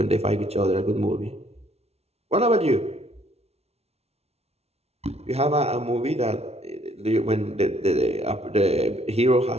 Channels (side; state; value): left; late; 0.31 ms